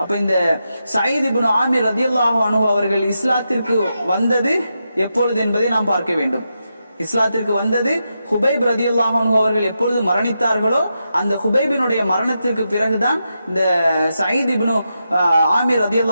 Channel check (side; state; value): both; inverted; correlation -0.86